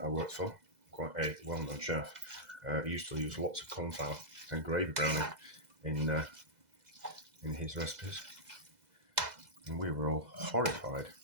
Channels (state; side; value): late; left; 2.0 ms